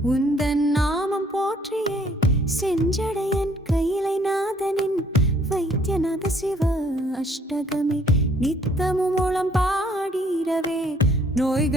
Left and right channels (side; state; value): both; normal; correlation 0.62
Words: உந்தன் நாமம் போற்றியே செஞ்சடையன் கையிலை நாதனின் வைத்தியநாத சிவ அஷ்டகமே நித்தமும் மூலம் பாடிரவே